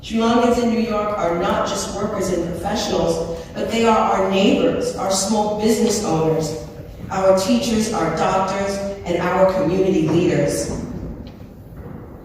Sri Lankans in New York are not just workers and professionals, but they are our neighbors, our small business owners, our teachers, our doctors, and our community leaders.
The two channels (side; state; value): both; identical; correlation 1.00